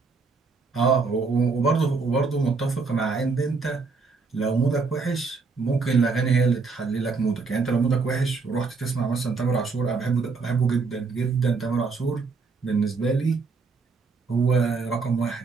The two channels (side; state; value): left; quieter; 4.5 dB